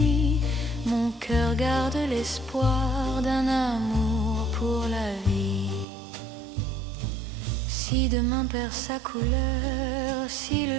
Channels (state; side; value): drops out; left; at 5.9 s